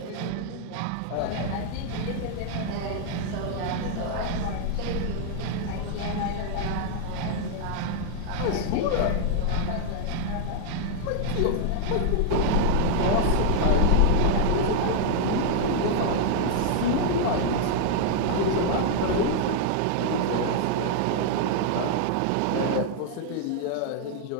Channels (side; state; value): both; different; correlation 0.00